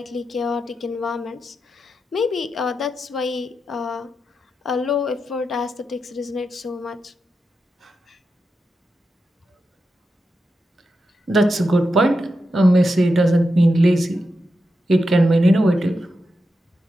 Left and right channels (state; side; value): normal; both; correlation 0.88